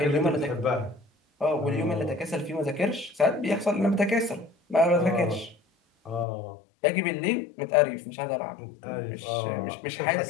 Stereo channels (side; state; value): right; drops out; at 6.2 s